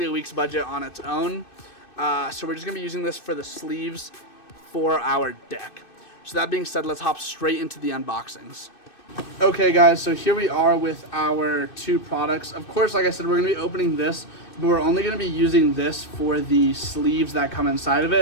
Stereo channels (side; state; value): right; late; 2.6 ms